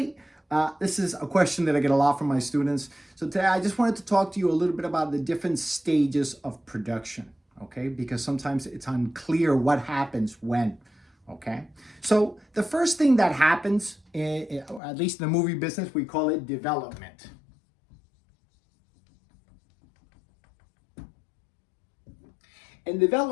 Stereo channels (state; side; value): drops out; right; at 14.8 s